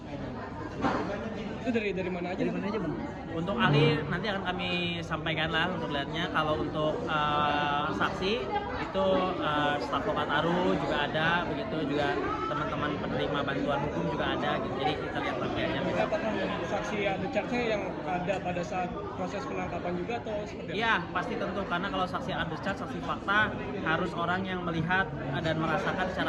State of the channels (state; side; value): identical; both; correlation 1.00